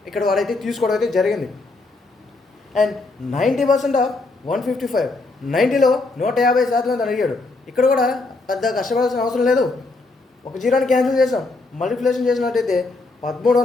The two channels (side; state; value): right; quieter; 3.4 dB